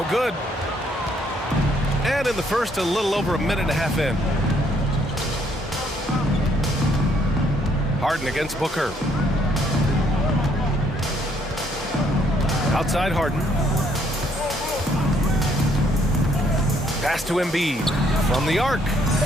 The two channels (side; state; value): both; normal; correlation 0.68